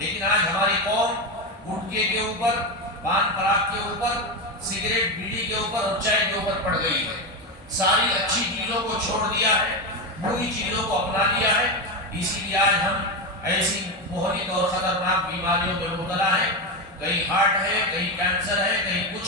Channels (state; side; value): normal; both; correlation 0.13